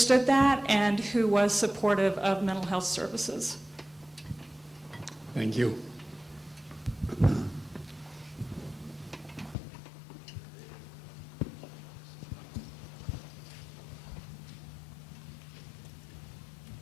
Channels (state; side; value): drops out; right; at 9.6 s